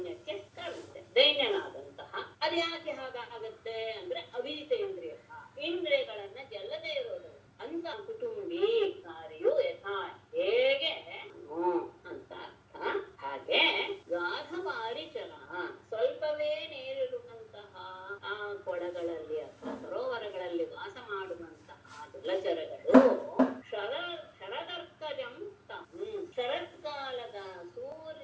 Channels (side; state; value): both; identical; correlation 1.00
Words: ಕಾರಣುತ್ತೆ. ದೈನ್ಯನಾದಂತಹ ಅದ್ಯಾಕೆ ಹಾಗಾಗತ್ತೆ ಅಂದ್ರೆ ಅವಿಜಿತ ಇಂದ್ರಿಯ, ಇಂದ್ರಿಯಗಳನ್ನ ಗೆಲ್ಲದೆ ಇರೋದು ಅಂತ ಕುಟುಂಬಿ ಕಾರ್ಯು ಯಥಾ ಹೇಗೆ ಅಂತ ಅರ್ಥ. ಹಾಗೆ ಗಾಧವಾರಿ ಚಲ ಸ್ವಲ್ಪವೇ ನೀರಿರುವಂತಹ ಆ ಕೊಳಗಳಲ್ಲಿ ಅಥವಾ ಸರೋವರಗಳಲ್ಲಿ ವಾಸ ಮಾಡುವಂತಹ ಜಲಚರಗಳು ಶರದರ್ಥಜಂ ಶರತ್ಕಾಲದ